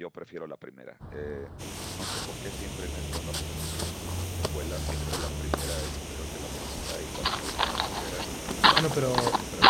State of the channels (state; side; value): identical; both; correlation 1.00